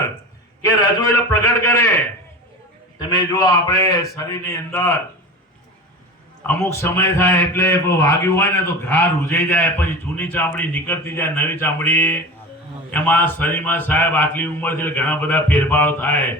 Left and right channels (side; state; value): both; normal; correlation 0.31